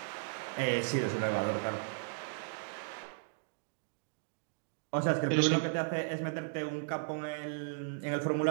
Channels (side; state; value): left; silent; digital silence